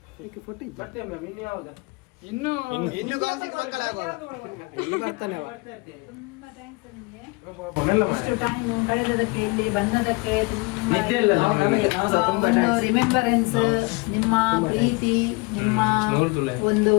ಇನ್ನು ಬರ್ತಾನೆ ಇಷ್ಟು ಟೈಮ್ ಕಳೆದದಕ್ಕೆ ಇಲ್ಲಿ ಬಂದದಕ್ಕೆ ತುಂಬಾ ನಿದ್ದೆ ಇಲ್ಲ ನಮಗೆ. ನಾವು ಸಹ ತುಂಬಾ ಒಂದು thanks. ರಿಮೆಂಬರೆನ್ಸ್, ನಿಮ್ಮ ಪ್ರೀತಿ, ನಿಮ್ಮ ನೋಡ್ತುಲೆ. ಒಂದು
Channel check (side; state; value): right; quieter; 27.1 dB